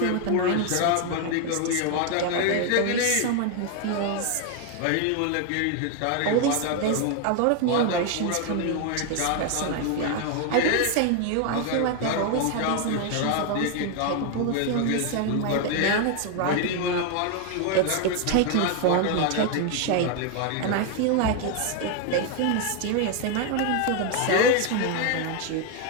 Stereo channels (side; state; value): both; different; correlation 0.01